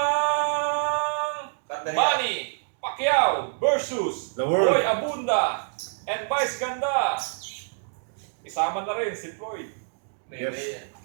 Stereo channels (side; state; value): left; silent; digital silence